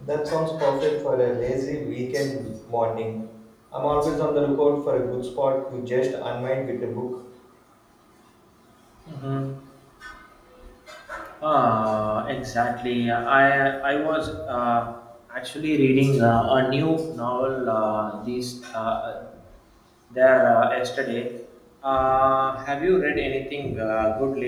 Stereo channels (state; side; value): identical; both; correlation 1.00